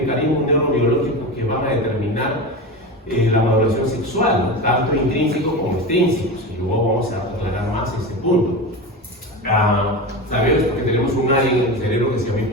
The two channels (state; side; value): normal; both; correlation 0.24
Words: neurobiológicos que van a determinar la maduración sexual, ¿no? Tanto intrínsecos como extrínsecos, y luego vamos a aclarar más ese punto. Sabemos que tenemos un área en el cerebro que se llama